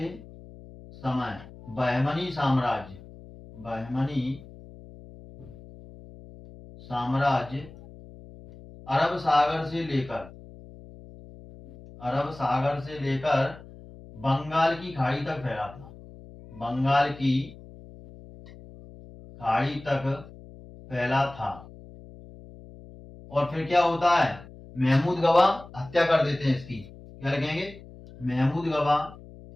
समय बहमनी साम्राज्य, बहमनी साम्राज्य अरब सागर से लेकर, अरब सागर से लेकर बंगाल की खाड़ी तक फैला था, बंगाल की खाड़ी तक फैला था। और फिर क्या होता है, महमूद गवा हत्या कर देते हैं इसकी, क्या लिखेंगे महमूद गवा,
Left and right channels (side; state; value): left; noise; hum, 18 dB below the sound